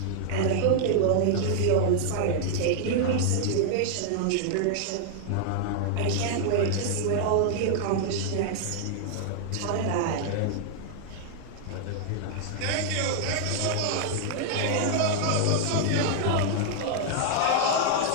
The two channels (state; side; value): different; both; correlation -0.01